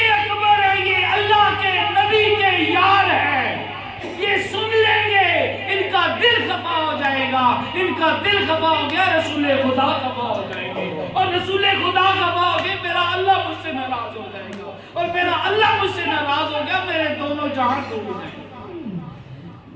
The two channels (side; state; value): both; identical; correlation 1.00